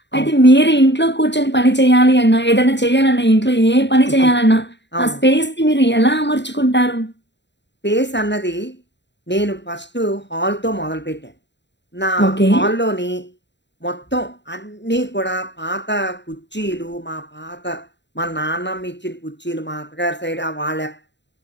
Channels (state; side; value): late; right; 0.52 ms